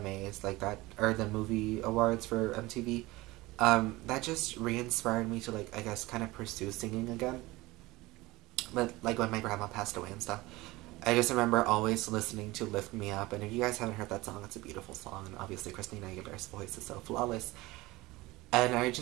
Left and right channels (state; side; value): quieter; left; 20.4 dB